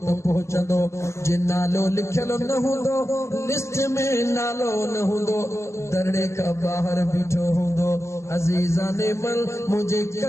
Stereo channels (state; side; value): late; right; 0.13 ms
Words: त पहुचंदो जे नालो लिखल न हूंदो लिस्ट में नालो न हूंदो दरड़े का बाहर बीठो हूंदो अजीज़ाने मल मुझे